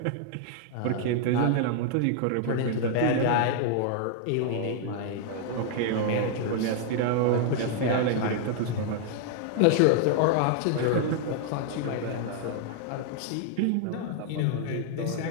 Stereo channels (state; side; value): different; both; correlation 0.00